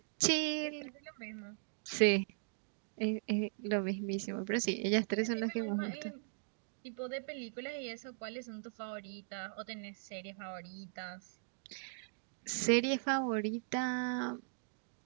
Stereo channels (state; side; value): silent; left; digital silence